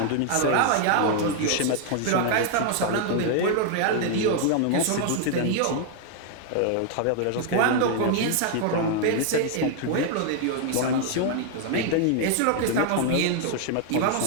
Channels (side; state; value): both; different; correlation 0.00